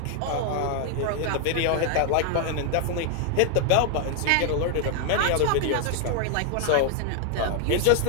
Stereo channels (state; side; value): different; both; correlation 0.00